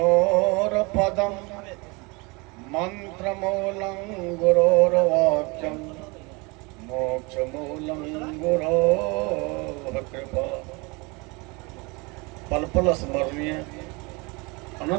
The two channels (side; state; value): left; quieter; 27.4 dB